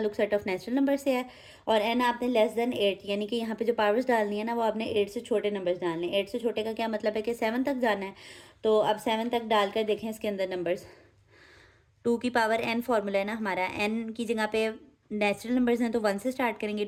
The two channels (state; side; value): identical; both; correlation 1.00